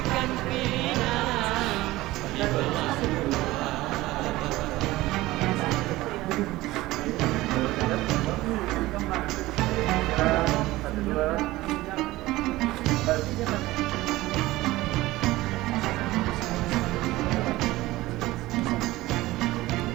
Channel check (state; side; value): quieter; left; 18.1 dB